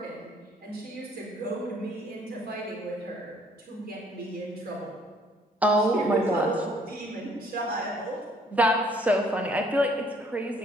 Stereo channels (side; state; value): both; normal; correlation 0.61